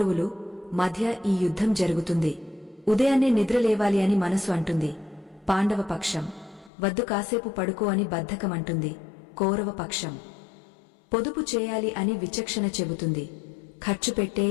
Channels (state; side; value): drops out; right; at 6.7 s